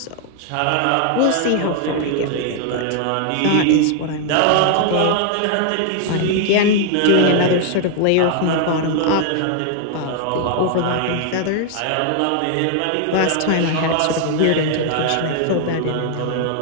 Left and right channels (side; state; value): both; different; correlation 0.00